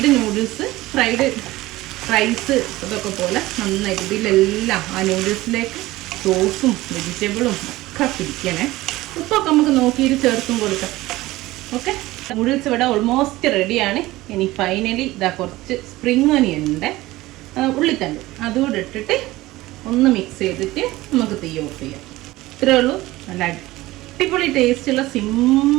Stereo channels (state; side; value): quieter; left; 18.2 dB